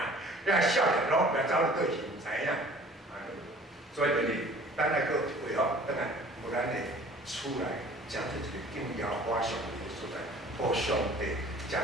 对啊，遐少年拢袂走去对现知影。所以就是咱来个配合，等下有咱的厝内，讲出一个敬仰我上帝的所在，互上帝。食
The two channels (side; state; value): both; normal; correlation 0.49